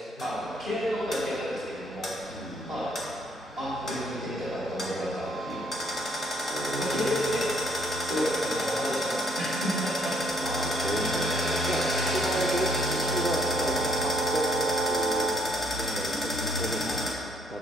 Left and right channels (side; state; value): both; normal; correlation 0.68